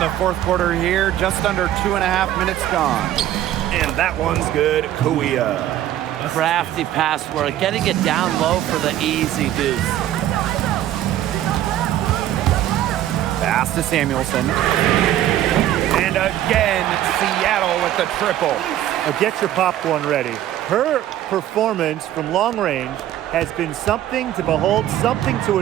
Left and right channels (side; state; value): left; quieter; 12.5 dB